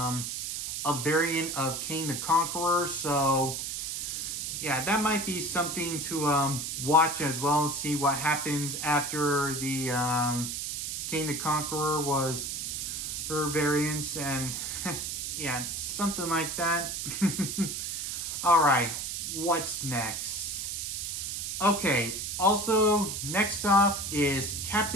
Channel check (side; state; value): right; noise; hiss, 4 dB below the sound